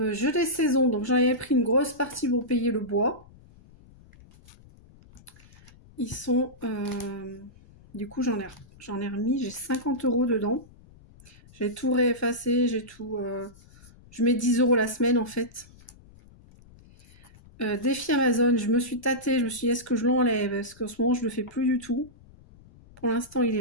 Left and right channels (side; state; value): left; noise; rumble, 24 dB below the sound